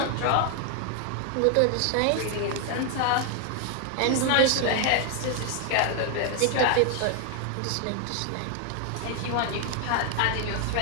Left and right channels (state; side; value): different; both; correlation 0.00